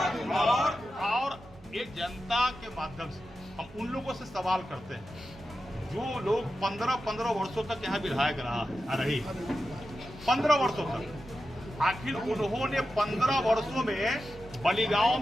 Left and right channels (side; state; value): both; normal; correlation 0.91